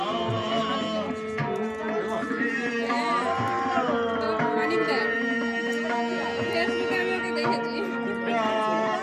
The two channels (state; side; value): identical; both; correlation 1.00